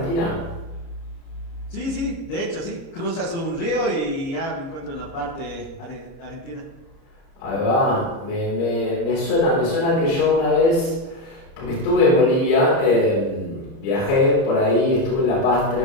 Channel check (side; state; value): right; late; 30 ms